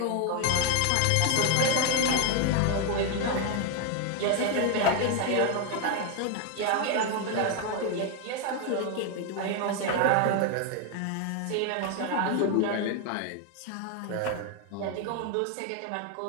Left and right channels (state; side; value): different; both; correlation 0.01